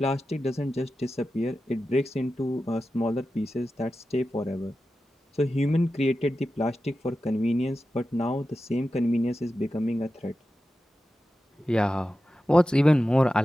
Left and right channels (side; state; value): both; normal; correlation 0.92